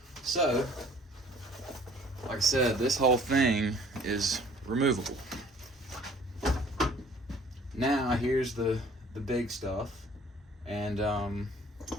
So, like I said, this whole thing is removable. Now here's the big stuff, and a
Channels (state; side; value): normal; both; correlation 0.54